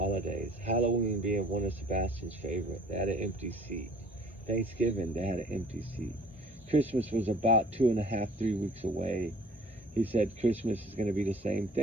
Halloween being one of Sebastian's favorite. They had an empty seat. Thanksgiving, they had an empty seat. Christmas was about 2.5, 3 weeks away. He said Christmas is going to be the same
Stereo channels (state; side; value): normal; both; correlation 0.52